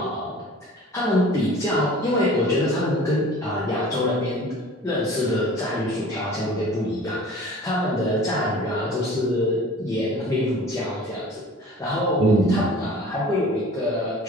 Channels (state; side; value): normal; both; correlation 0.44